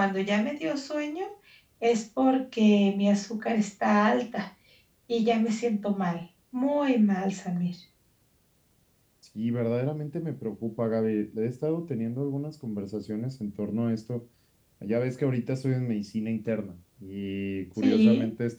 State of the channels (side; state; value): both; identical; correlation 1.00